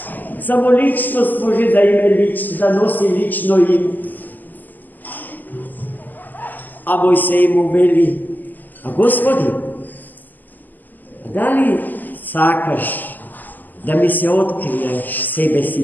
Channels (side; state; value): right; late; 0.087 ms